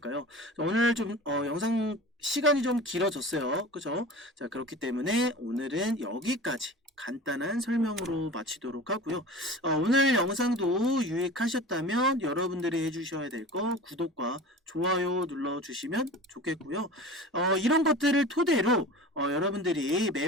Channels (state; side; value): normal; both; correlation 0.36